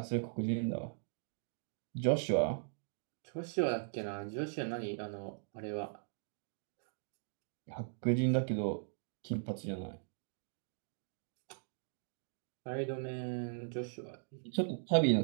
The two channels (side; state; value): left; silent; digital silence